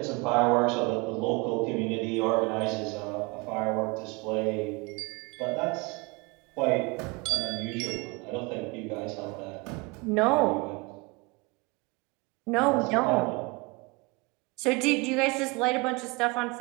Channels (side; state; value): left; quieter; 27.2 dB